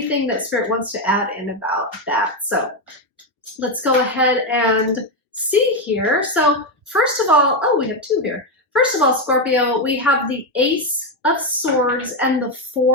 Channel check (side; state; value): both; normal; correlation 0.07